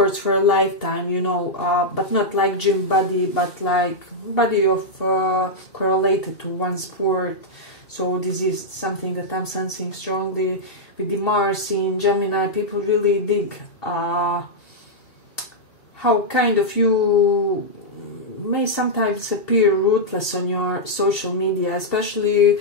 for a lifetime, you know, but not like gym body, but like body of correlated to one sport. So this is something that I'm sensing strongly. With the Mars in Gemini, people really dig how kind of you may sometimes appear ruthless on your social media, especially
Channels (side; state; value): right; late; 2.7 ms